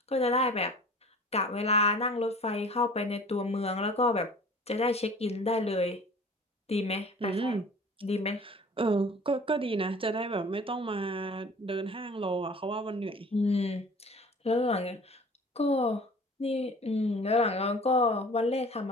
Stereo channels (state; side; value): normal; both; correlation 0.45